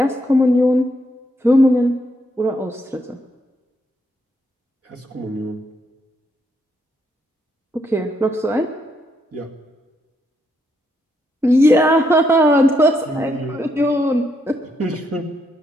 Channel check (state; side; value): normal; both; correlation 0.77